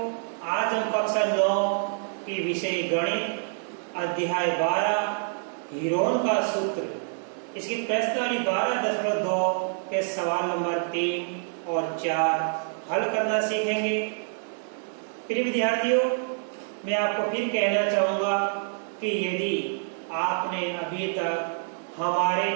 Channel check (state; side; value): silent; left; digital silence